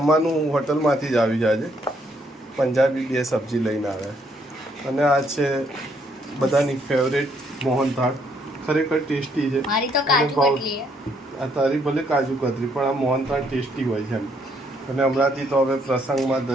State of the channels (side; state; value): both; normal; correlation 0.70